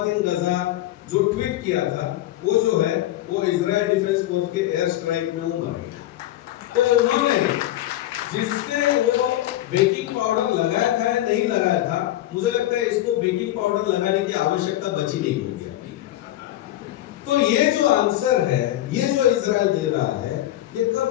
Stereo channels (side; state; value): right; quieter; 14.4 dB